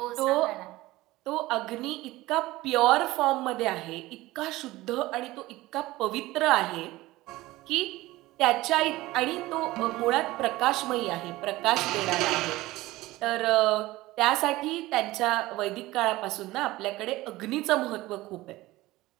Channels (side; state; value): left; quieter; 18.4 dB